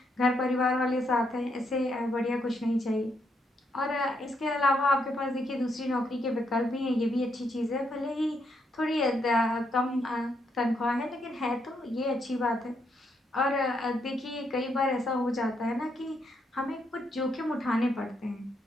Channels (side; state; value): both; normal; correlation 0.77